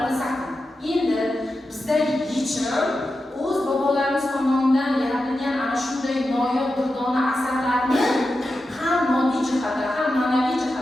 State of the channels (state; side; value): normal; both; correlation 0.90